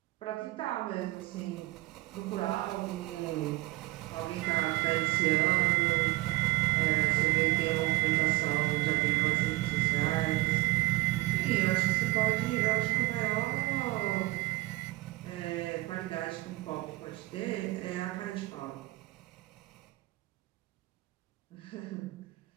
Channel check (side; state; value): left; quieter; 19.2 dB